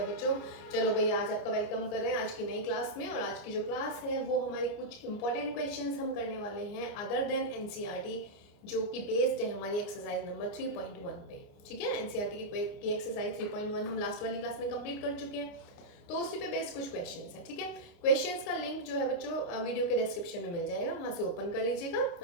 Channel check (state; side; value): late; right; 29 ms